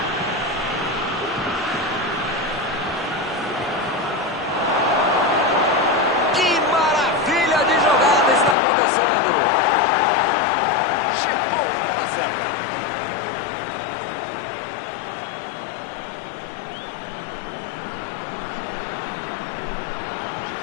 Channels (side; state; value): right; drops out; at 8.6 s